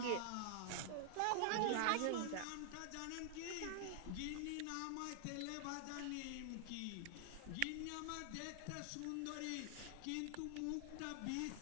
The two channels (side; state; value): both; different; correlation 0.00